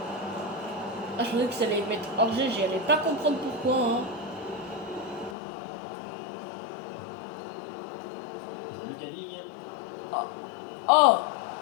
Ah, je pensais que ça allait mettre hors jeu, j'allais pas comprendre pourquoi. Hein. Lucas Digne. Oh,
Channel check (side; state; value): right; drops out; at 5.4 s